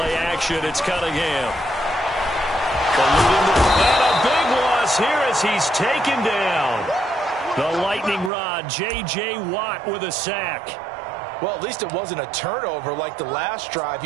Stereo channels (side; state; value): left; drops out; at 8.3 s